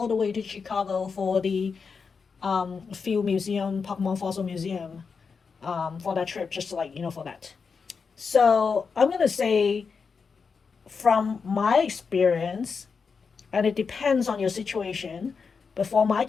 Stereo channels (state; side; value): quieter; right; 5.4 dB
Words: the way to Chicago for the Field Museum, Pokemon Fossil Museum, for that trip, just like, for that. So I'm gonna say from my experience, and it depends on your situation, but for my